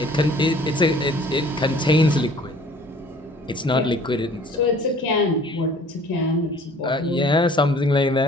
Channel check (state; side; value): normal; both; correlation 0.52